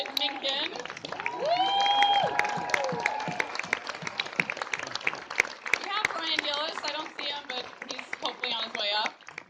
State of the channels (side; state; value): both; identical; correlation 1.00